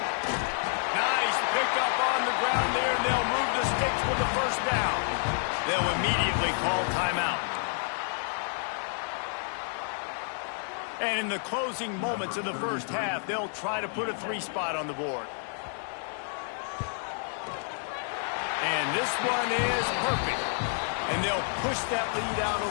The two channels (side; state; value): right; silent; 58 dB below the other